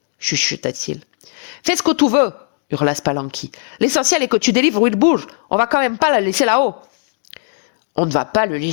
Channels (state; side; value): silent; right; digital silence